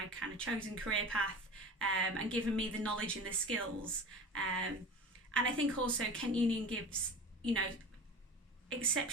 kind of chosen career path, and given me the knowledge and the skills. And I think also Kent Union gives,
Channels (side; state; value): both; normal; correlation 0.34